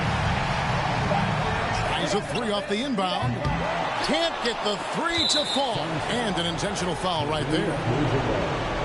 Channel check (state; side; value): identical; both; correlation 1.00